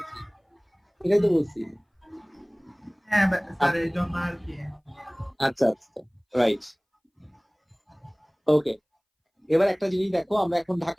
এটাই তো বলছি। হ্যাঁ স্যার, এই জন্য আর কি। আচ্ছা আচ্ছা, রাইট। ওকে, এবার একটা জিনিস দেখো, আমরা এখন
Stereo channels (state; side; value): identical; both; correlation 1.00